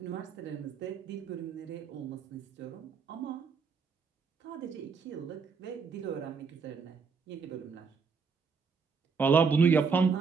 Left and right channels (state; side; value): quieter; left; 5.4 dB